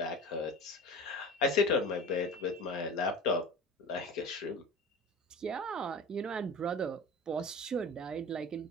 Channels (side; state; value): both; normal; correlation 0.35